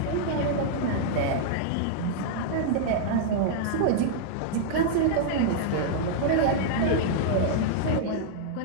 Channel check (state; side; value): different; both; correlation -0.01